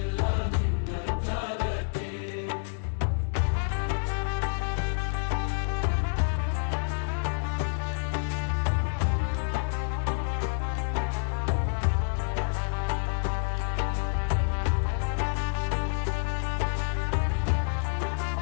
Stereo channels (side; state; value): right; silent; digital silence